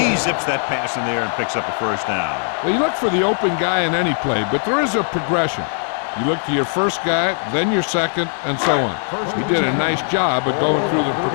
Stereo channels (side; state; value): right; silent; 56 dB below the other